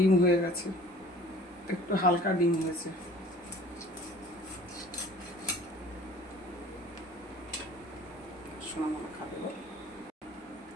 হয়ে গেছে, একটু হালকা ডিম হয়েছে। সোনামালা খাবে বল।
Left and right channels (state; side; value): normal; both; correlation 0.48